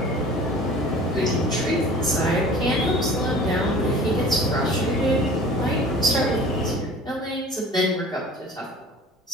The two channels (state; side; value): normal; both; correlation 0.43